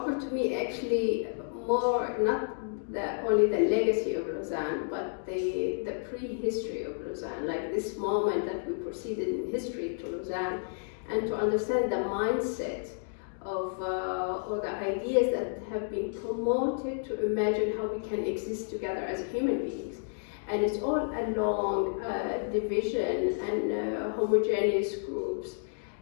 to me actually more, not only the legacy of Lausanne, but the prehistory of Lausanne, like this moment that we proceeded in history to Lausanne, and to understand the mindset of all the ideas that have been promoted to imagine how we can exist together as human beings. And it's all along division and homogeneous groups,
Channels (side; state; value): right; silent; digital silence